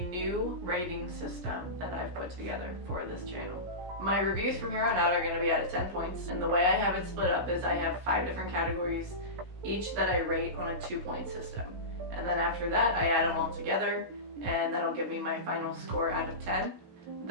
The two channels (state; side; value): late; left; 17 ms